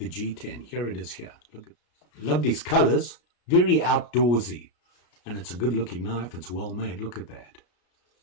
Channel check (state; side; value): late; right; 33 ms